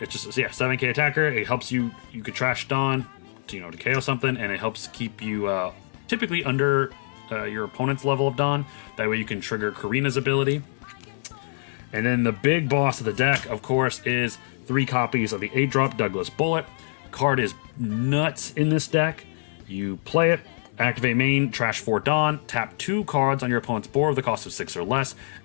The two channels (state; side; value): silent; right; 55 dB below the other